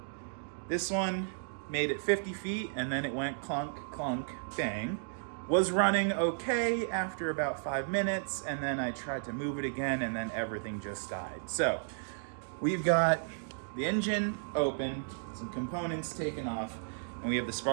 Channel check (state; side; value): silent; left; digital silence